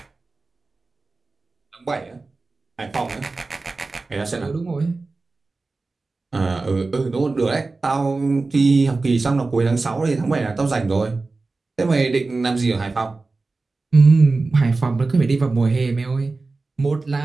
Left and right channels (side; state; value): left; quieter; 3.6 dB